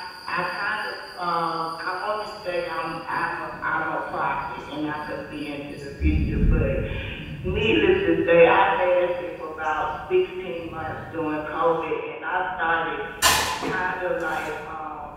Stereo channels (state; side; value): identical; both; correlation 1.00